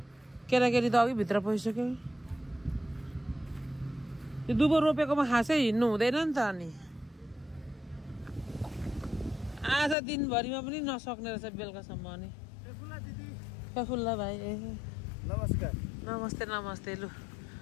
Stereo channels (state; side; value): drops out; right; at 10.0 s